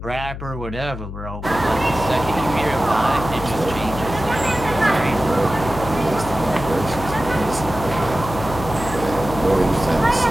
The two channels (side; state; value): left; noise; hum, 9 dB below the sound